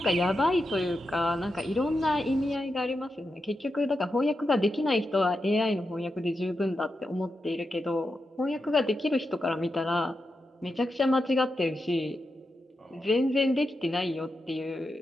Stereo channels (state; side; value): normal; both; correlation 0.88